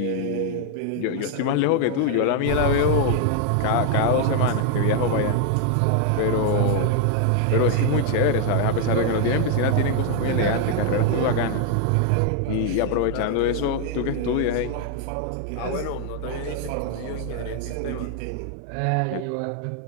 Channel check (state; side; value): different; both; correlation 0.00